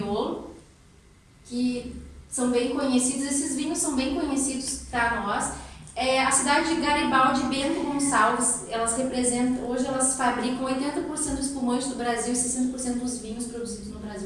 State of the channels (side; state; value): both; identical; correlation 1.00